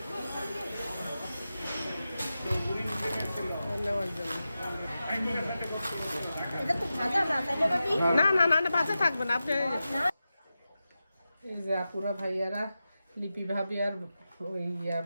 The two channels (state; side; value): inverted; both; correlation -0.92